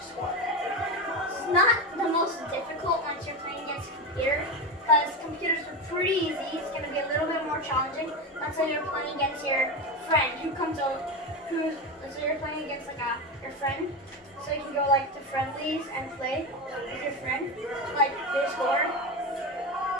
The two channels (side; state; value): both; normal; correlation 0.18